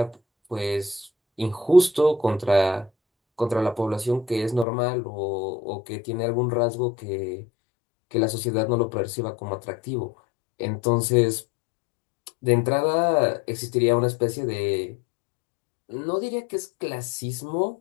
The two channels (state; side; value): drops out; right; at 4.7 s